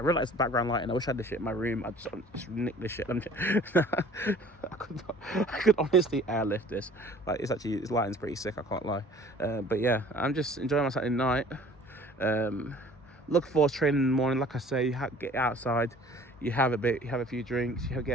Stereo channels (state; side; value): normal; both; correlation 0.50